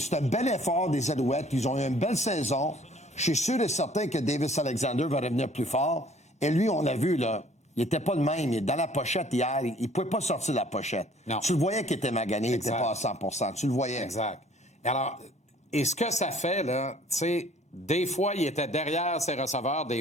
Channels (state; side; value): normal; both; correlation 0.56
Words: un bel effort des Alouettes. Ils ont eu une belle saison. Je suis sûr et certain que Davis Alexander va revenir plus fort. Et lui, on l'a vu, là. Il était pas le même. Dans la pochette hier, il pouvait pas sortir de la pochette. Non. Tu le voyais qu'il était magané, il était pas à 100%. Tu le voyais. Exact. Alors, et ce que ça fait, là, tu sais, des fois, il était derrière ses receveurs,